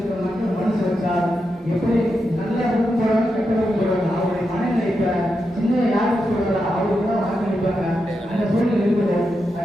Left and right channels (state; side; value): normal; both; correlation 0.86